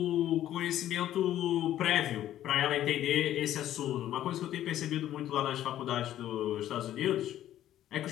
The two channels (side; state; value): right; quieter; 12.4 dB